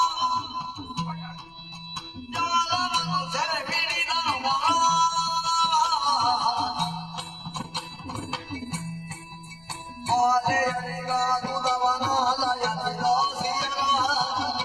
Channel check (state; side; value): noise; left; rumble, 27 dB below the sound